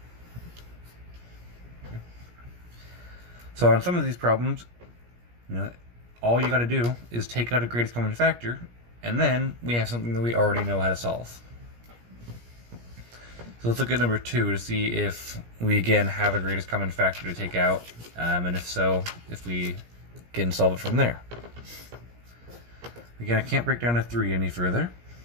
Okay. So on some of these problems, all you got to do is take out a greatest common factor, and then we have something that we already know how to solve. So let's look at number 2 to see if we again have a greatest common factor to take out, and if so, if we can solve it from there. Again, I can't break down a 3 any further,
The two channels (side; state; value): left; late; 17 ms